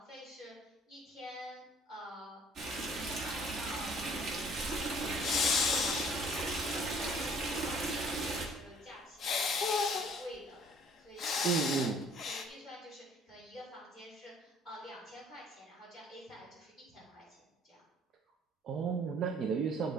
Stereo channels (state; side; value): normal; both; correlation 0.56